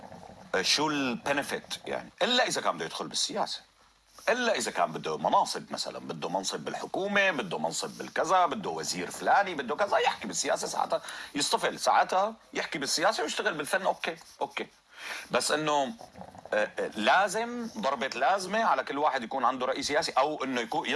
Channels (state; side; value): identical; both; correlation 1.00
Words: شو البنفيت يعني؟ إلا إذا كان بده يدخل بالسياسة، إلا إذا كان بده مناصب، مثلا بده منصب بالحكومة، بده منصب بالكذا، بده وزير فلاني، بده كذا، يحكي بالسياسة ساعتها يصطفل، ساعتها يحكي بالسياسة ويشتغل بالفن. أوكي بس إنه لازم ضربة لازمة على كل واحد يكون عنده رأي سياسي، أو إنه يكون